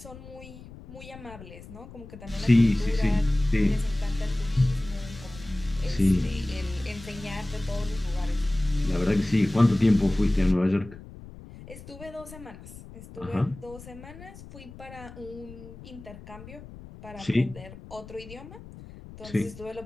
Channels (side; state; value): left; noise; rumble, 16 dB below the sound